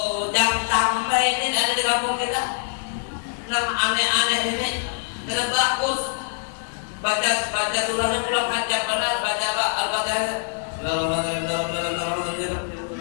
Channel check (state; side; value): silent; right; digital silence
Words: jangan sampai ini ada di kampung kita. Nama aneh-aneh ini, karena bagus. Baca surahnya pulang panjang benar, baca Al-Fatihah.